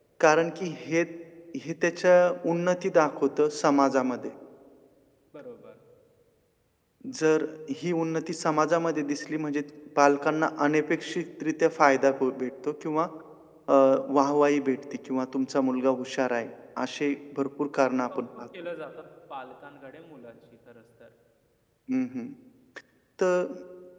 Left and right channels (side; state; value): both; identical; correlation 1.00